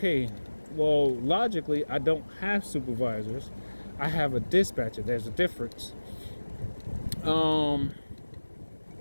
well, logically, I don't have supervisors. I have a dispatcher. There's a difference.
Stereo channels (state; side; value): inverted; both; correlation -1.00